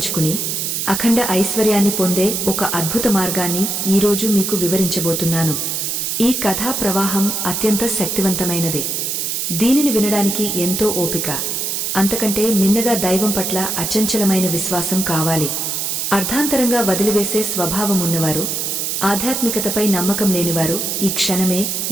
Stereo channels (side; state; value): right; noise; hiss, 1 dB below the sound